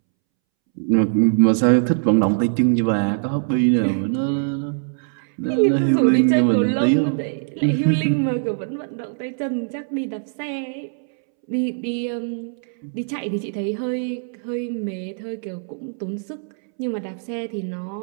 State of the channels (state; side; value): silent; left; 64 dB below the other